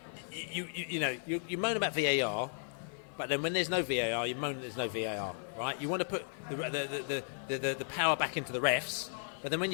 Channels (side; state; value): right; silent; 54 dB below the other